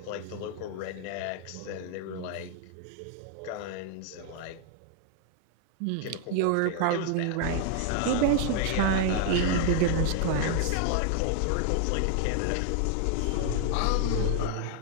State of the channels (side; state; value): both; different; correlation 0.00